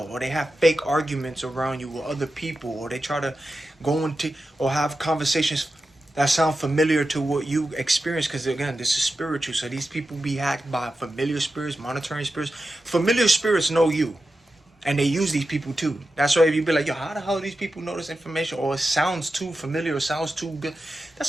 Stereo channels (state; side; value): normal; both; correlation 0.91